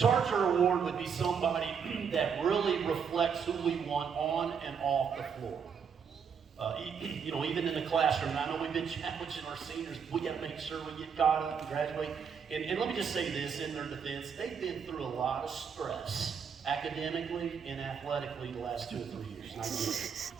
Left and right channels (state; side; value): quieter; left; 6.7 dB